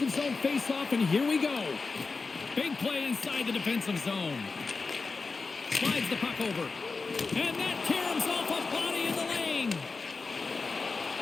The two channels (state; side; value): quieter; right; 4.2 dB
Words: zone faceoff, and here we go. Big play inside the defensive zone. Slides the puck over. And that caroms off a body in the lane.